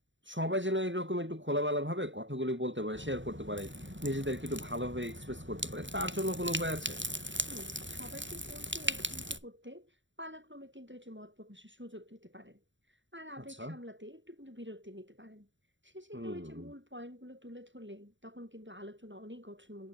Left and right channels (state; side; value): late; left; 0.54 ms